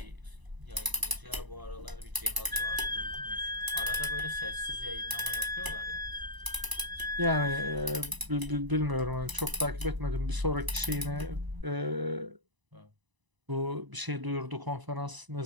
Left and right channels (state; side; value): late; left; 1.0 ms